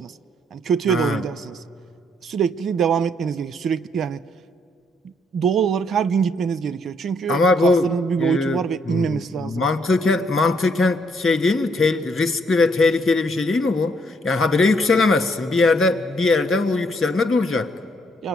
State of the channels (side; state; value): both; normal; correlation 0.70